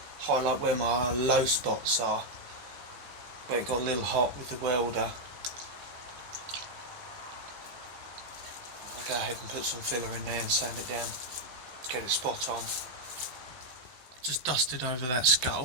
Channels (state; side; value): late; left; 16 ms